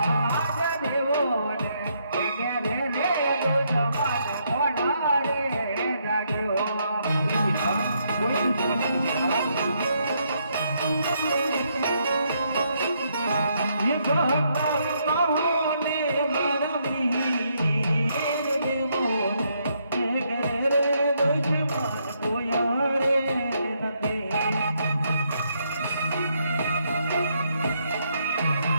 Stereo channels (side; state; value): both; inverted; correlation -0.75